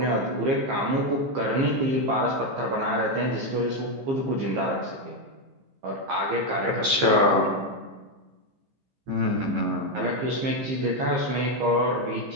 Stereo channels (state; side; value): late; left; 14 ms